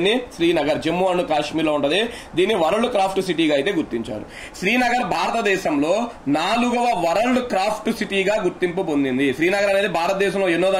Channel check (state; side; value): identical; both; correlation 1.00